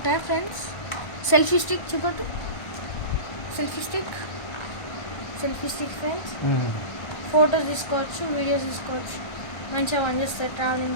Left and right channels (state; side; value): late; right; 1.3 ms